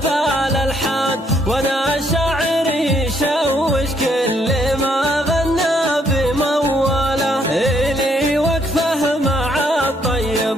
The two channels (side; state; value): both; normal; correlation 0.70